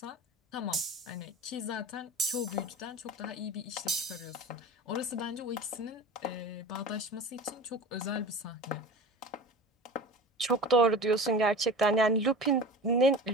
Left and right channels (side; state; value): both; normal; correlation 0.34